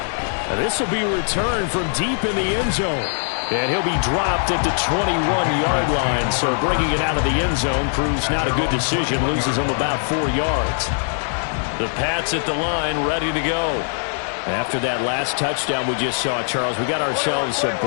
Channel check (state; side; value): silent; right; digital silence